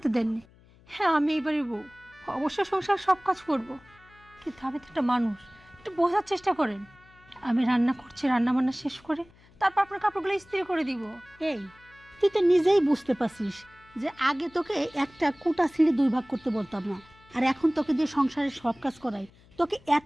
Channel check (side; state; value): left; noise; hum, 27 dB below the sound